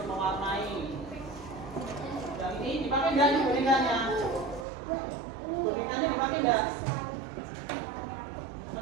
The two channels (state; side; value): drops out; left; at 4.7 s